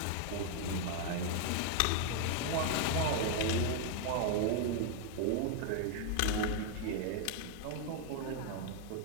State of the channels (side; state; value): both; different; correlation 0.00